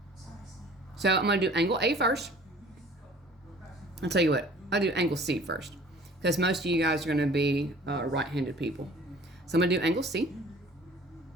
So I'm going to do angle A first. I'll tell you what, I'll do angle C first, because most of you guys are going to be right-handed people. So I'm going to do angle C.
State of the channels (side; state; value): both; normal; correlation 0.50